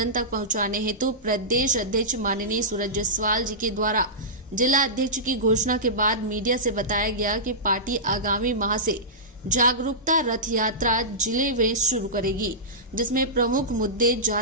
तक पहुंचाने हेतु प्रदेश अध्यक्ष माननीय सूरज जायसवाल जी के द्वारा जिला अध्यक्ष की घोषणा के बाद मीडिया से बताया गया कि पार्टी आगामी माह से जागरूकता रथ यात्रा जिले में शुरू करेगी, जिसमें प्रमुख मुद्दे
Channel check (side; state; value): both; normal; correlation -0.17